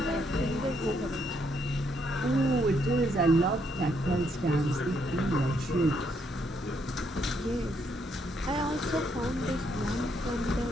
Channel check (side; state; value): both; normal; correlation 0.74